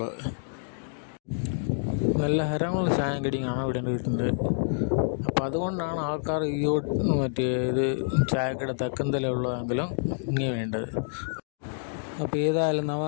നല്ല ഹരമുള്ള ചായം കടിയാണ് ഇവിടെ കിട്ടുന്നത്. അപ്പം അതുകൊണ്ടാണ് ആൾക്കാർ മറ്റേ ഇത് ചായക്കട തെക്കന്തലുള്ളതെങ്കിലും ഇങ്ങനെ വേണ്ടത്. അപ്പോൾ ഏതായാലും നമ്മൾ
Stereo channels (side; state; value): right; silent; digital silence